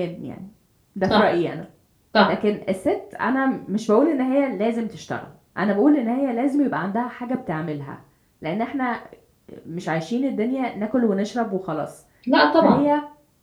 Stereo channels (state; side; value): identical; both; correlation 1.00